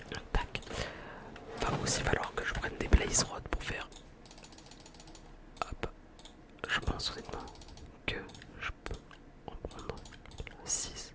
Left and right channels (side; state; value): both; identical; correlation 1.00